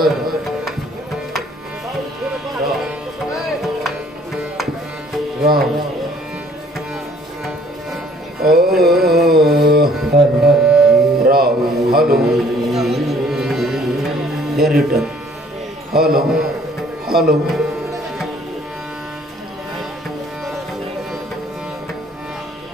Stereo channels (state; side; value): normal; both; correlation 0.58